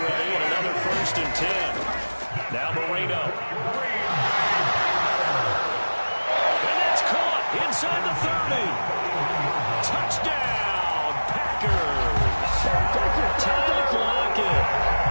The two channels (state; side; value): inverted; both; correlation -1.00